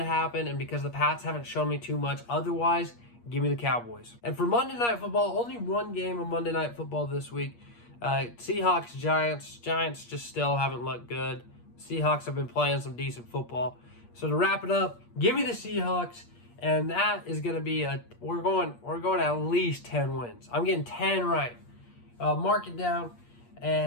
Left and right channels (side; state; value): right; late; 8.5 ms